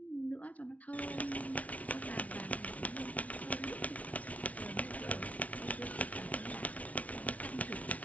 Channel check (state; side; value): late; right; 0.068 ms